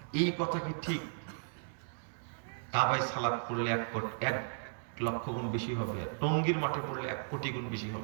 এই কথা কি ঠিক? কাবায় সালাত পড়লে 1 লক্ষ গুণ বেশি হবে, আর টঙ্গীর মাঠে পড়লে 1 কোটি গুণ বেশি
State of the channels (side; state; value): left; silent; 54 dB below the other